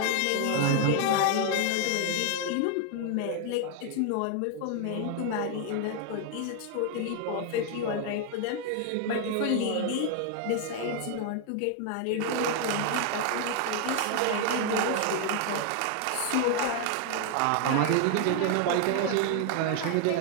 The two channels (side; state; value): both; different; correlation 0.00